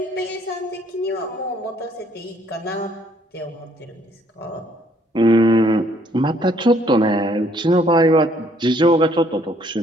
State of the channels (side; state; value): both; normal; correlation 0.65